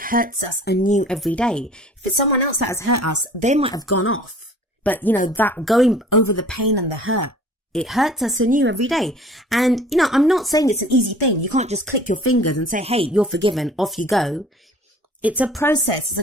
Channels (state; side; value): normal; both; correlation 0.49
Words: us anew every day. If it's someone else that has hurt us, they might have gone off. But, you know, that going over the pain and the hurt, it hurts us anew every day. And, you know, I'm not saying it's an easy thing. You can't just click your fingers and say, hey, you're forgiven, off you go. It's a process. It's